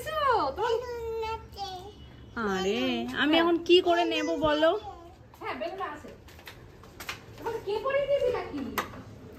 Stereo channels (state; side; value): identical; both; correlation 1.00